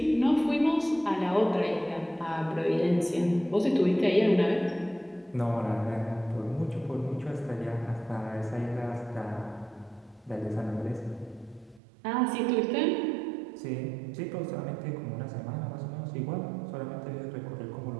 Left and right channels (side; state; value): left; drops out; at 11.8 s